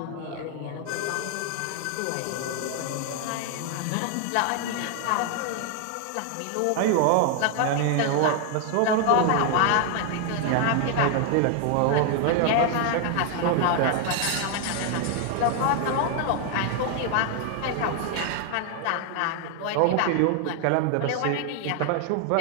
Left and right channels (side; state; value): both; different; correlation 0.00